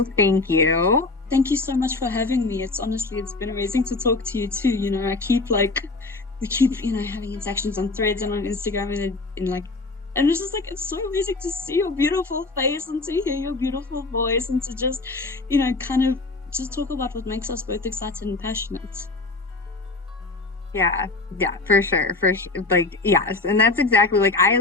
thank you. Thank you so much for having me. It's honestly, it's been amazing to talk to you too. You know, we keep, you know, having interactions on Threads and on Instagram and it's just like, it's so amazing to see your beautiful face and to hear your beautiful voice and to just, you know, kind of just talk about what makes us both excited and passionate. Yeah, yeah, for sure, for sure. Like, yes, and that's exactly like I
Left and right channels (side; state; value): right; quieter; 3.5 dB